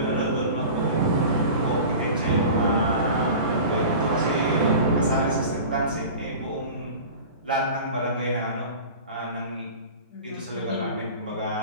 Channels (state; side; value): inverted; both; correlation -0.36